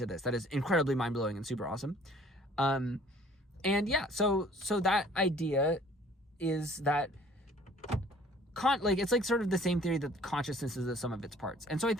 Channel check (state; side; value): normal; both; correlation 0.54